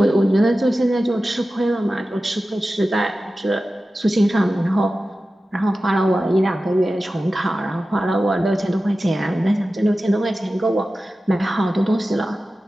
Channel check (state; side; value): normal; both; correlation 0.94